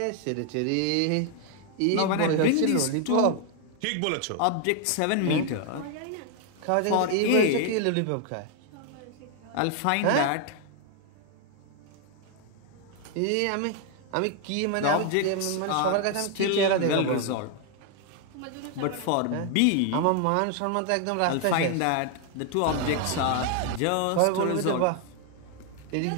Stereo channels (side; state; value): both; different; correlation 0.00